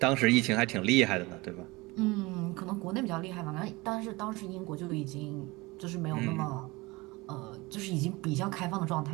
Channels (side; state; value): left; quieter; 23.0 dB